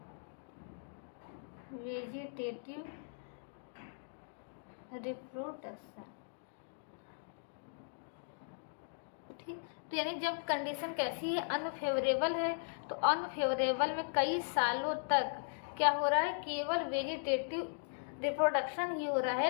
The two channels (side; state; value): right; silent; digital silence